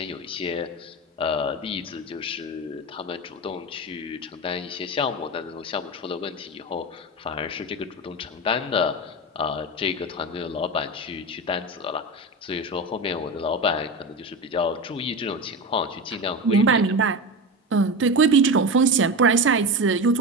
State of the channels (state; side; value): normal; both; correlation 0.22